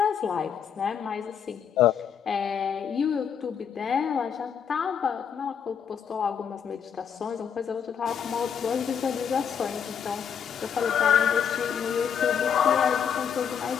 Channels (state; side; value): quieter; right; 7.6 dB